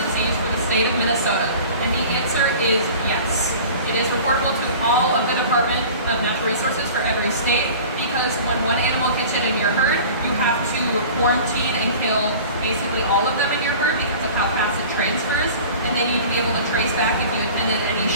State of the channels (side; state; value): both; inverted; correlation -0.41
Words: disease for the state of Minnesota? And the answer is yes. It is reportable to all of the Department of Natural Resources for every state because when one animal gets it in your herd, you have to quarantine and kill basically all of them in your herd because of how fast it transfers. And they need to be able to trace back if you attended any